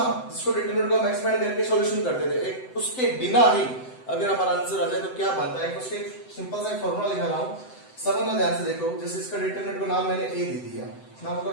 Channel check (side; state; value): right; late; 7.8 ms